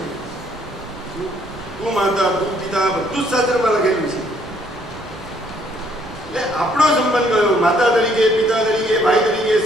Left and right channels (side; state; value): both; normal; correlation 0.66